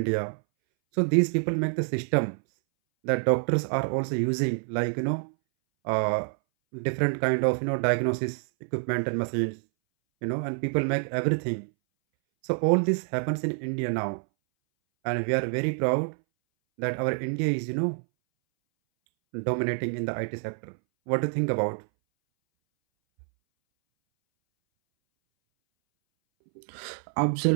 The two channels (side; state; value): left; silent; 60 dB below the other